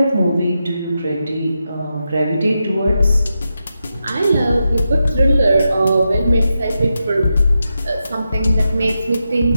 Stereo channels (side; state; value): both; inverted; correlation -0.87